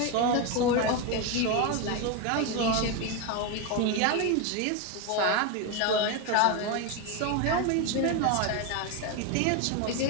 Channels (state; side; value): different; both; correlation 0.03